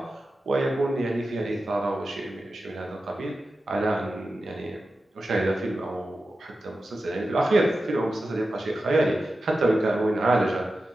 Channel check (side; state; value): both; normal; correlation 0.92